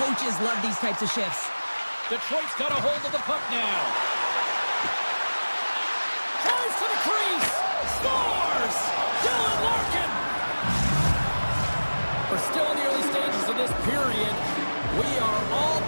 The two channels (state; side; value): inverted; both; correlation -1.00